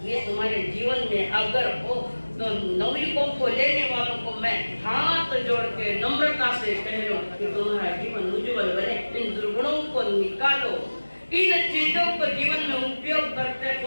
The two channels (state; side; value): inverted; both; correlation -1.00